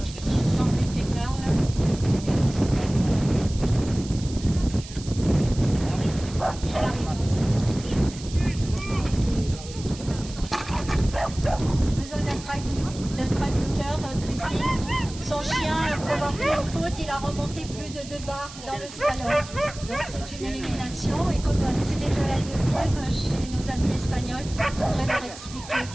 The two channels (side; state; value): right; noise; hiss, 15 dB below the sound